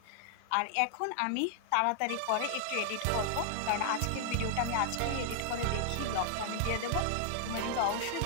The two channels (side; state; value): both; different; correlation 0.00